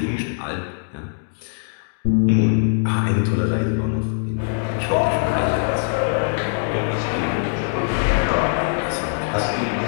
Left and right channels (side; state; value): right; silent; digital silence